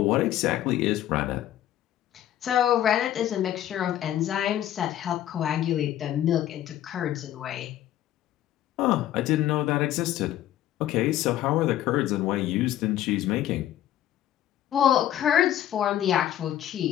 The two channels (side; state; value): right; quieter; 12.2 dB